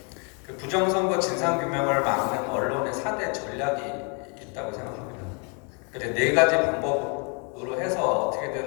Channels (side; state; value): right; quieter; 36.3 dB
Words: 그 부정선거 진상규명을 막는 언론의 4대 전략이 있다고 생각합니다. 그러니까 네 가지 방법으로 해서